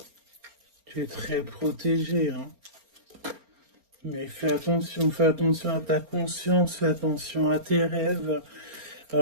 tu es très protégé, hein. Mais fais attention à ta conscience, fais attention à tes rêves.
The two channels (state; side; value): late; left; 4.3 ms